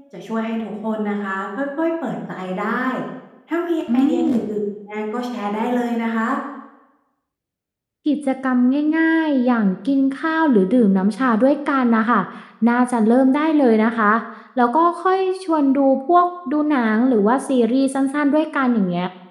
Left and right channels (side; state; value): both; identical; correlation 1.00